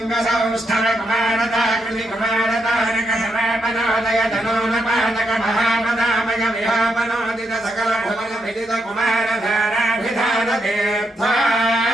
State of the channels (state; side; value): normal; both; correlation 0.80